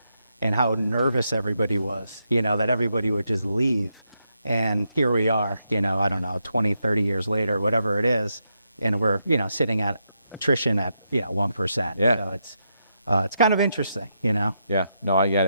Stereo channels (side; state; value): both; inverted; correlation -0.82